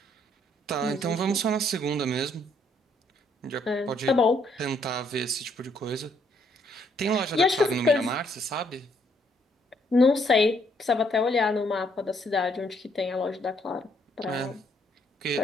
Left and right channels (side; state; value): both; normal; correlation 0.69